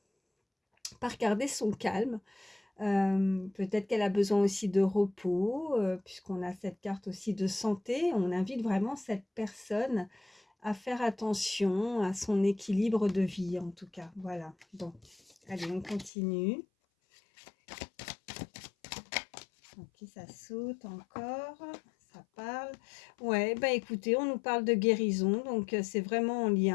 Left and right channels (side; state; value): right; drops out; at 16.1 s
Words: garder son calme. Peut-être qu'elle a besoin aussi de repos, puisqu'on a cette carte aussi de santé. On invite vraiment cette personne à faire attention à son équilibre de vie, en tout cas. Voilà. Bon, allez, on continue. Ok, ça saute encore. Ça parle. Ouais, bah écoutez, on nous parle de guérison, donc c'est vraiment en